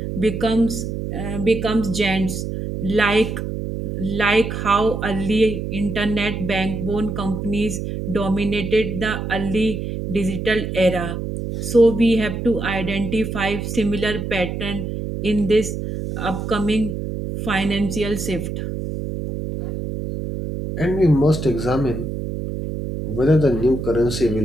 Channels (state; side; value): noise; right; hum, 5 dB below the sound